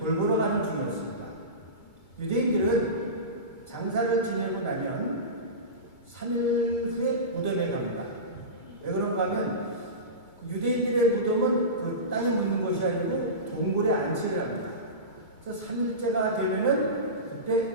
가는 중이었습니다. 유대인들은 장사를 지내고 나면 3일 후에 무덤에 갑니다. 왜 그런가 하면 유대인들의 무덤은 그 땅에 묻는 것이 아니고 동굴에 안치를 합니다. 그래서 3일째가 되면은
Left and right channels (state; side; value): late; right; 2.3 ms